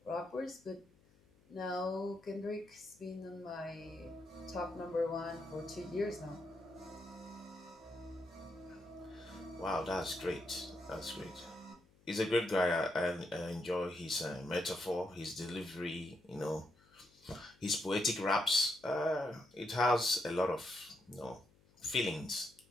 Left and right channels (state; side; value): noise; left; hum, 29 dB below the sound